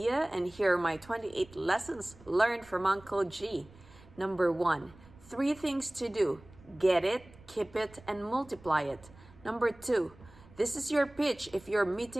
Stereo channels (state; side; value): noise; right; rumble, 23 dB below the sound